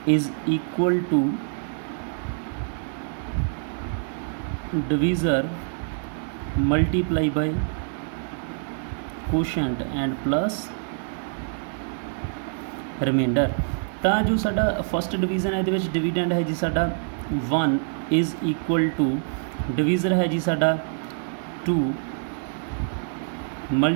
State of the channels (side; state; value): left; silent; 59 dB below the other